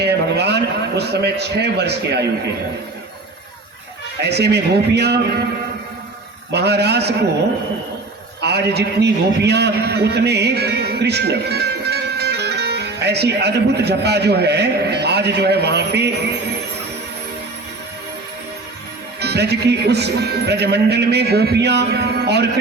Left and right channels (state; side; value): quieter; left; 3.3 dB